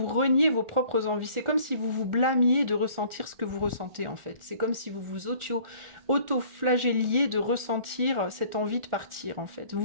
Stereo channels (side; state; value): left; late; 1.4 ms